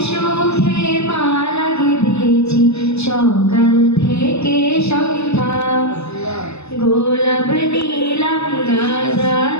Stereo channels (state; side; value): late; right; 0.80 ms